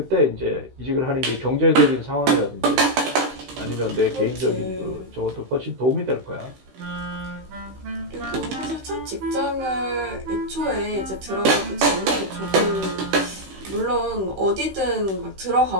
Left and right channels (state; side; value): late; left; 16 ms